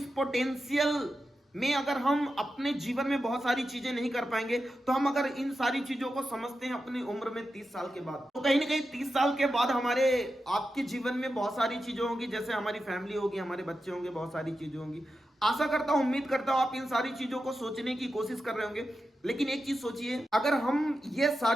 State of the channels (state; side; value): normal; both; correlation 0.90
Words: पोटेंशियल में अगर हम अपने जीवन में बहुत सारी चीजें नहीं कर पाएंगे, तो हम अगर इन सारी चीजों को समझते हैं अपनी उम्र में 30 साल के बाद, तो कहीं ना कहीं 30 साल के बाद हमारे आपके जीवन में बहुत सारी चीजें होंगी, जैसे हमारी फैमिली होगी, हमारे बच्चे होंगे, बहुत सारी चीजें होंगी। आशा करता हूं, उम्मीद करता हूं आप इन सारी चीजों को सोचने की कोशिश कर रहे होंगे। लेकिन एक चीज सोचिए, अगर हम ये